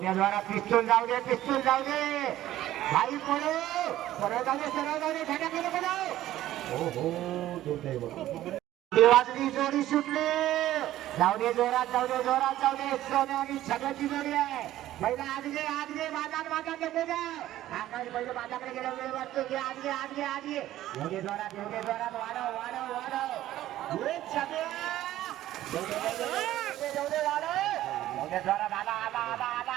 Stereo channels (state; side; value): quieter; left; 14.0 dB